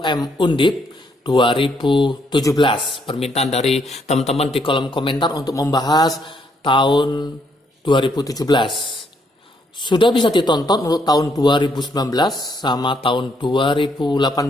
Undip 2017. Permintaan dari teman-teman di kolom komentar untuk membahas tahun 2017. Sudah bisa ditonton untuk tahun 2019 sama tahun 2018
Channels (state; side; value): normal; both; correlation 0.72